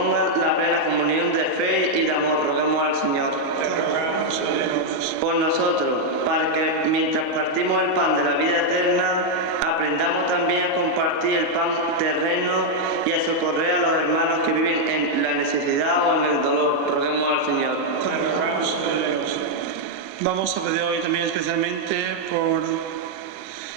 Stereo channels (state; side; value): normal; both; correlation -0.01